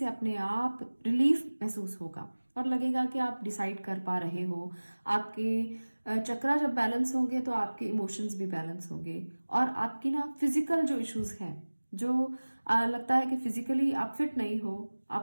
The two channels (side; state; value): both; inverted; correlation -1.00